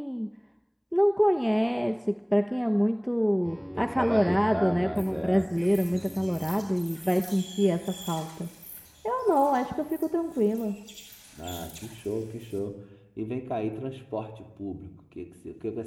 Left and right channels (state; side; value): identical; both; correlation 1.00